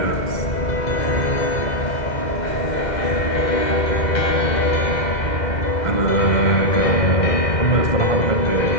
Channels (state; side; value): late; right; 2.1 ms